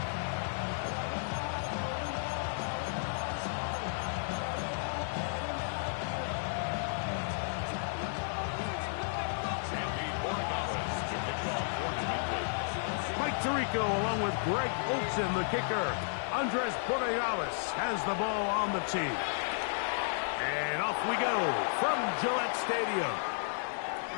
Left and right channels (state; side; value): silent; right; digital silence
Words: Tirico along with Greg Olsen, the kicker. Andres Borregales has the ball on the tee. And off we go from Gillette Stadium.